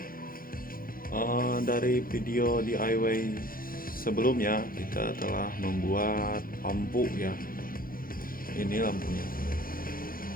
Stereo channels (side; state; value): right; late; 0.42 ms